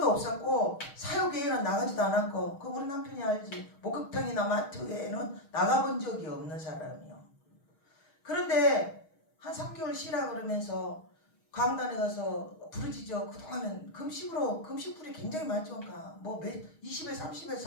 없었고 사역회에는 나가지도 않았고 그 우리 남편이 알지. 목욕탕이나 마트에는 나가본 적이 없는 사람이요. 그런데 한 3개월 쉬라 그러면서 강단에 가서 부르짖어. 그동안은 금식불이 굉장히 많죠. 뭐 20일, 30일,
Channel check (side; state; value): right; late; 6.4 ms